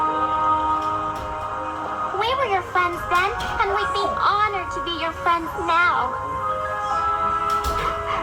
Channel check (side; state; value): both; identical; correlation 1.00